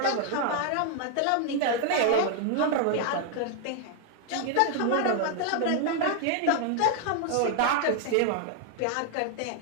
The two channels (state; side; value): different; both; correlation 0.00